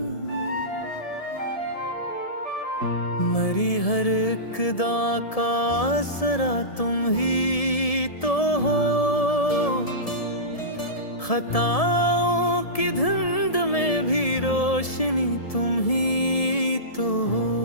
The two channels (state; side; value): late; right; 1.7 ms